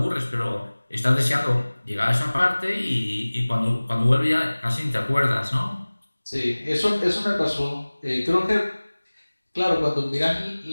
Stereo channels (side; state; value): both; inverted; correlation -1.00